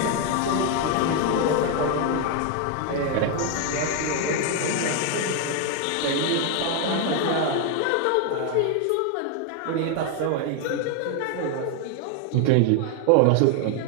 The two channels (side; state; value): both; different; correlation 0.01